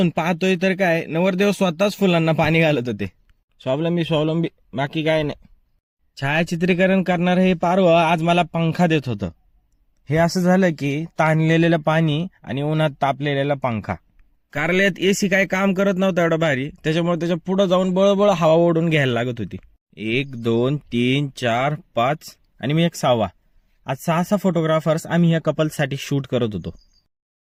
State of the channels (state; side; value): identical; both; correlation 1.00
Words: पाहतोय तर काय, नवरदेव स्वतःच फुलांना पाणी घालत होते. स्वावलंबी बाकी काय नाही. छायाचित्रीकरण करणार हे पारवं आज मला पंखा देत होतं. हे असं झालं की ताणलेलं पाणी आणि उन्हात तापलेला पंखा. कारल्यात एसी काय काम करत नव्हता एवढा भारी, त्याच्यामुळे त्याच्या पुढे जाऊन बळबळ हवा ओढून घ्यायला लागत होती. 1 2 3 4 5 आणि मी एक 6वा. आज 6 फोटोग्राफर्स आम्ही या कपलसाठी शूट करत होतो.